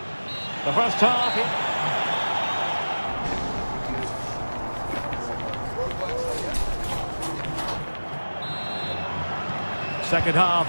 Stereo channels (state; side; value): inverted; both; correlation -1.00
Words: The first half. Second half